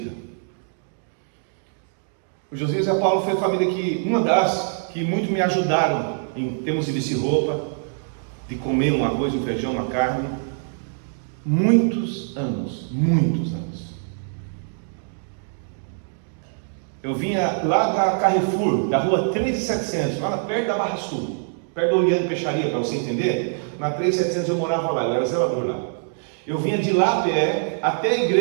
O Josias e a Paula foi a família que, uma das que muito me ajudaram em termos de vestir roupa, de comer um arroz, um feijão, uma carne. Muitos anos. Eu vinha lá da Carrefour, da rua 3700, lá perto da Barra Sul, perto do Oriente Peixaria, para você entender. Na 3700 eu morava lá, eu era zelador lá. Eu vinha de lá a pé até a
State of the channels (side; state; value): left; silent; digital silence